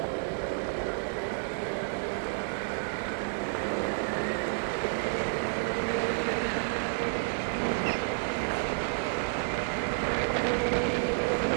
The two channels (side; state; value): left; silent; 58 dB below the other